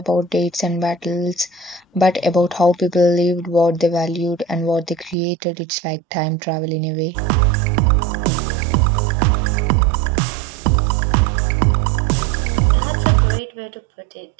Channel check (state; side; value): drops out; left; at 5.2 s